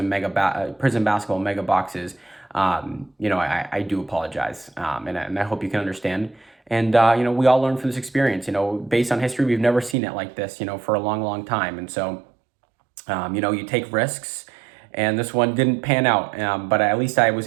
basketball mega boxes, I do apologize, and I hope you can understand. And, we all learn from this experience. Based on history, we've never seen it like this, for a long, long time. And so, you take risks, and this one didn't pan out, but at least I was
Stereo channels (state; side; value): drops out; left; at 10.0 s